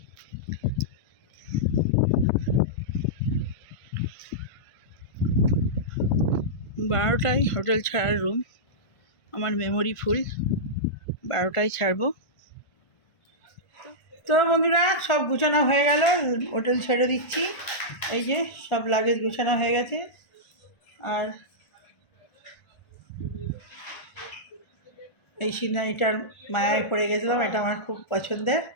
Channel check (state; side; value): late; right; 1.4 ms